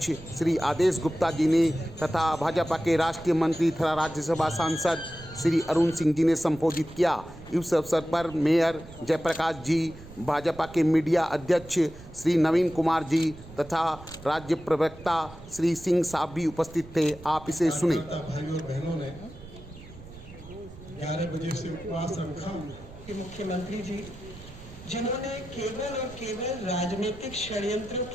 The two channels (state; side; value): noise; right; rumble, 18 dB below the sound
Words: श्री आदेश गुप्ता जी ने तथा भाजपा के राष्ट्रीय मंत्री तथा राज्यसभा सांसद श्री अरुण सिंह जी ने संबोधित किया। इस अवसर पर मेयर जयप्रकाश जी, भाजपा के मीडिया अध्यक्ष श्री नवीन कुमार जी तथा राज्य प्रवक्ता श्री सिंह साहब भी उपस्थित थे। आप इसे सुने। भाइयों और बहनों ने 11 बजे से उपवास रखा। मुख्यमंत्री जी, जिन्होंने केवल और केवल राजनीतिक षड्यंत्र